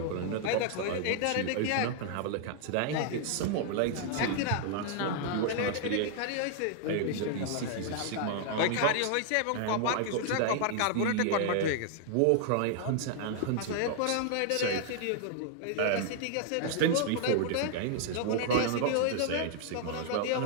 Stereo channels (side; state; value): both; different; correlation -0.01